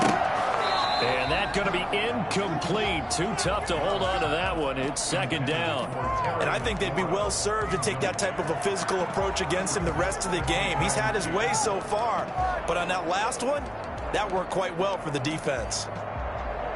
And that's going to be incomplete. Too tough to hold on to that one. It's 2nd down. And I think they'd be well served to take that type of a physical approach against him the rest of the game. He's had his way so far. But on that last one, that worked quite well for the defense.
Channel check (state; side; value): identical; both; correlation 1.00